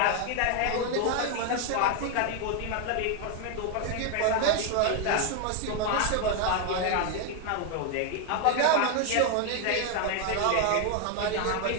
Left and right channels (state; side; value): different; both; correlation 0.01